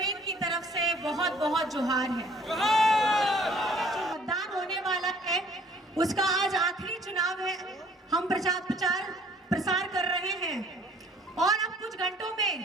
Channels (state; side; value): normal; both; correlation 0.56